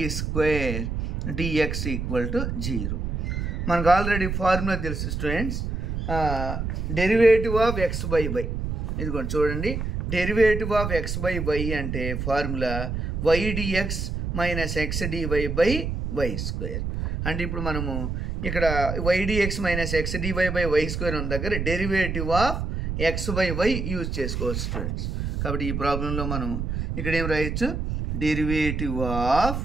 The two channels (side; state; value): right; noise; rumble, 3 dB below the sound